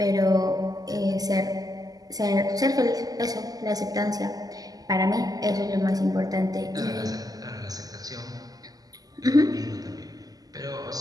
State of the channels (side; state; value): left; late; 0.18 ms